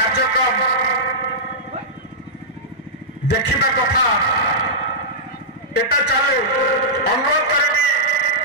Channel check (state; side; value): normal; both; correlation -0.12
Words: देखा कथा एटा चालू अनुरोध करी